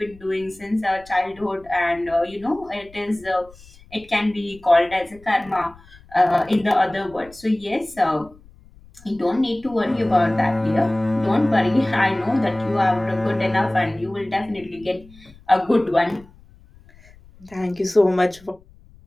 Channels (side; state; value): left; noise; rumble, 25 dB below the sound